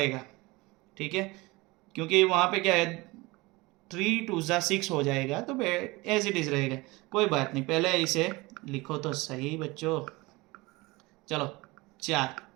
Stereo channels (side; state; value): left; quieter; 22.8 dB